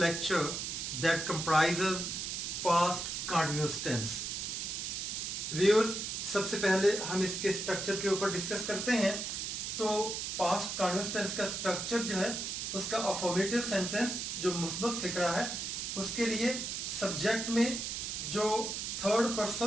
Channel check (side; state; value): right; noise; hiss, 3 dB below the sound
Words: that comprises past continuous tense. Viewers, सबसे पहले हम इसके स्ट्रक्चर के ऊपर डिस्कस करते हैं. तो पास्ट कंटिन्यूअस टेंस का स्ट्रक्चर जो है उसका अफर्मेटिव सेंटेंस जो मुस्बत फिक्रा है उसके लिए सब्जेक्ट में जो थर्ड